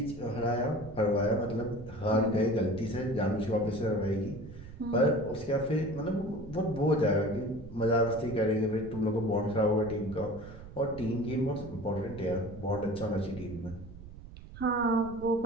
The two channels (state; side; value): noise; right; rumble, 15 dB below the sound